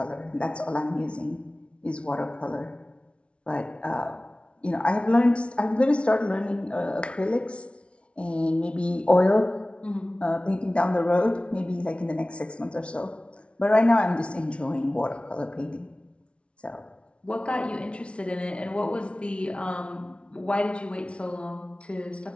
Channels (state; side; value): late; right; 0.060 ms